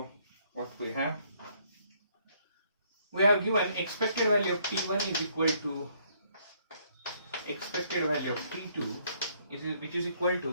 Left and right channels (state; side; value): inverted; both; correlation -0.67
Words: what we have given expected value of T1 is equal to expected value of T2 which is equal